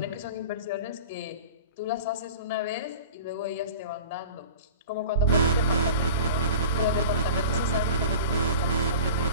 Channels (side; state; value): both; inverted; correlation -0.36